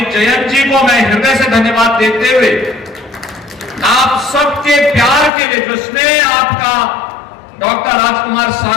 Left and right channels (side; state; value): right; drops out; at 5.3 s